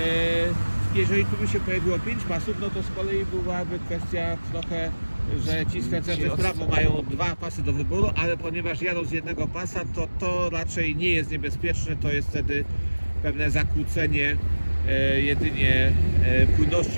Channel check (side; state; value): both; inverted; correlation -1.00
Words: Jeżeli tu by się pojawiło 5 pasów, no to z kolei byłaby kwestia trochę, że ci skręcający w prawo mają 2 pasy do wyboru, ale ponieważ jadą z jednego pasa, to raczej nie jest niebezpieczne, to jest wtedy pewne zakłócenie jedynie